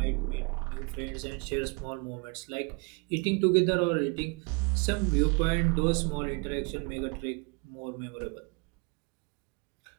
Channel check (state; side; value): quieter; left; 31.8 dB